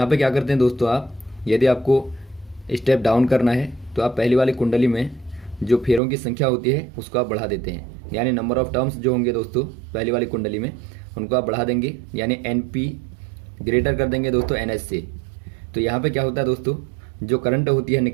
पे क्या करते हैं दोस्तों, आप यदि आपको स्टेप डाउन करना है तो आप पहली वाली कुंडली में जो फेरों की संख्या होती है उसको आप बढ़ा देते हैं, यानी नंबर ऑफ टर्म्स जो होंगे दोस्तों पहली वाली कुंडली में उनको आप बढ़ा देंगे, यानी NP ग्रेटर कर देंगे दोस्तों NS से। तो यहाँ पे क्या होता है दोस्तों, जो करंट होती है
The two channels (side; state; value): left; drops out; at 6.0 s